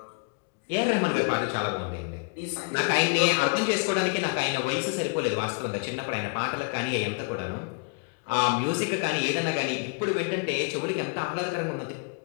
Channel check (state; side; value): quieter; right; 36.1 dB